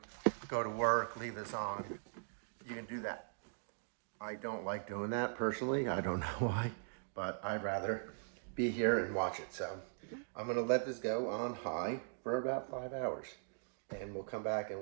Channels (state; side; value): silent; left; digital silence